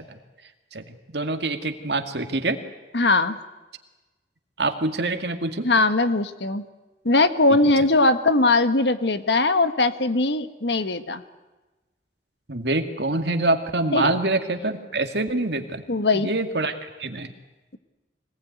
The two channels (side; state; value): both; normal; correlation -0.08